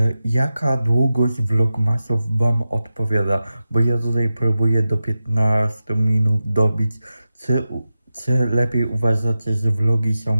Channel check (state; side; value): inverted; both; correlation -0.93